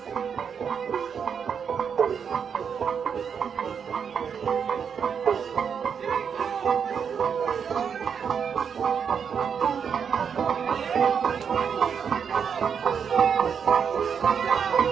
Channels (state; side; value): quieter; left; 7.0 dB